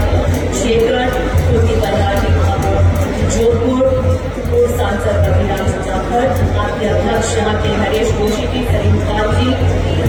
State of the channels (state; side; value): identical; both; correlation 1.00